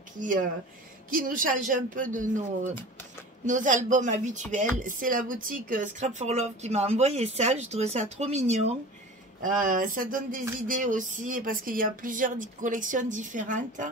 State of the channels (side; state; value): both; normal; correlation 0.38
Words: qui nous changent un peu de nos albums habituels. C'est la boutique Scrap for Love qui m'a envoyé ça. Je trouve ça trop mignon. Ça donne des idées aussi parce qu'il y a plusieurs collections différentes.